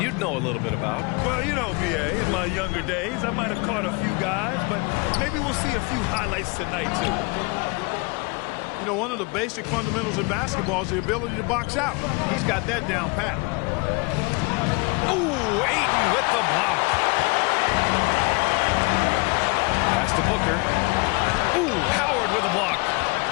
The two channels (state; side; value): quieter; right; 28.7 dB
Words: know a little bit about. Well, you know, B.A., in my younger days, I might have caught a few guys, but maybe we'll see a few highlights tonight, too. You know, one of the basic fundamentals in basketball is the ability to box out. He's got that down pat. Ooh, Ayton with the block. Pass to Booker. Ooh, Howard with a block.